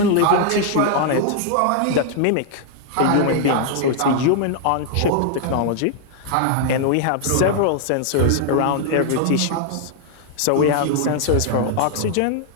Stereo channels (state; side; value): different; both; correlation 0.00